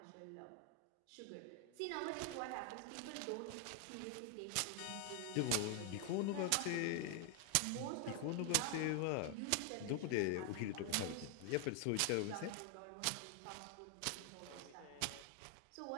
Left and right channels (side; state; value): both; different; correlation 0.00